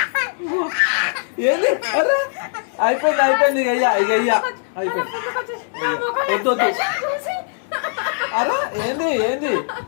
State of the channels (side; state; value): right; silent; digital silence